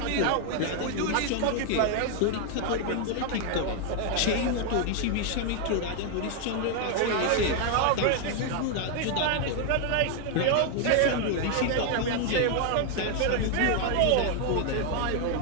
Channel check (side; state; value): both; different; correlation 0.00